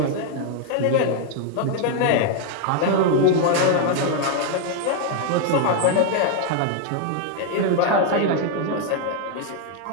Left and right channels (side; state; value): both; different; correlation 0.00